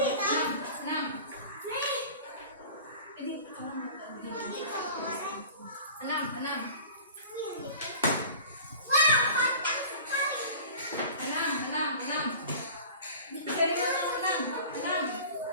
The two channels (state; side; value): inverted; both; correlation -0.41